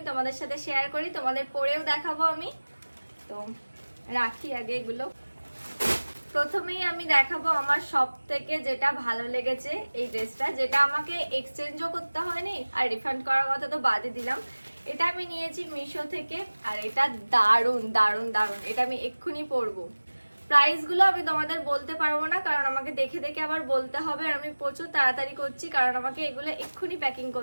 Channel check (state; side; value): inverted; both; correlation -1.00